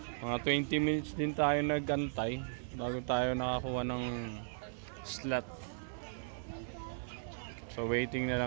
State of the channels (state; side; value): silent; left; 53 dB below the other